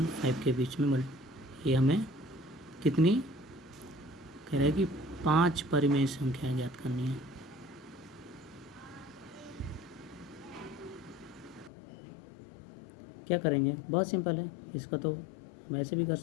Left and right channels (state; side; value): drops out; right; at 11.7 s